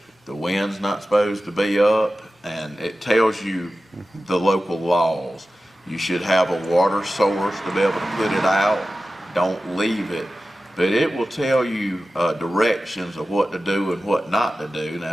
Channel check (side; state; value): both; normal; correlation 0.94